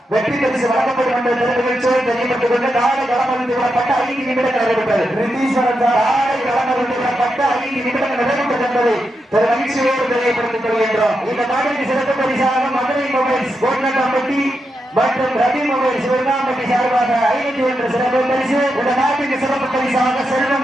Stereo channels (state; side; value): normal; both; correlation 0.86